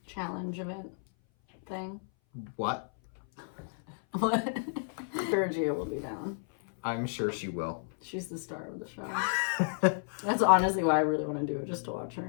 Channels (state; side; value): silent; right; 56 dB below the other